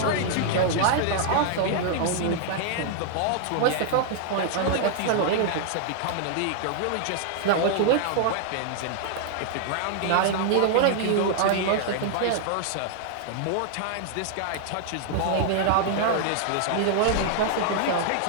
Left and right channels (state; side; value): different; both; correlation -0.01